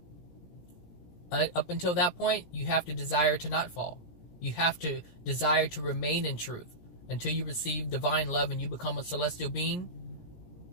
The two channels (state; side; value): late; right; 17 ms